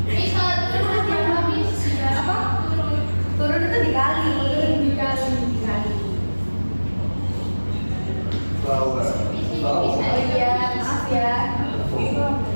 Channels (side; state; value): both; inverted; correlation -1.00